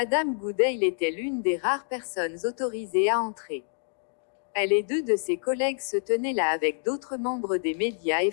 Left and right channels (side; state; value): right; silent; 60 dB below the other